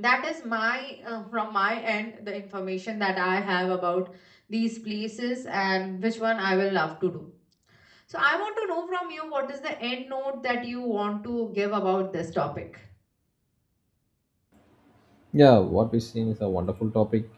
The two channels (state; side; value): identical; both; correlation 1.00